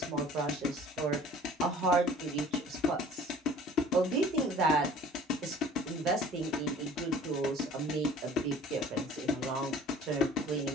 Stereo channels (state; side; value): normal; both; correlation 0.49